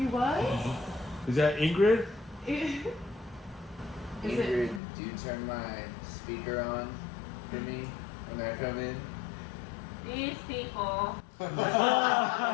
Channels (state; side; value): drops out; right; at 4.8 s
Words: was? Is that Ingrid? Is it? Ingrid, do you turn my speaker on for me when I come in? These people.